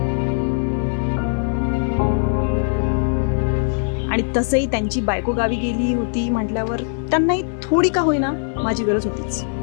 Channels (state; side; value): silent; right; 65 dB below the other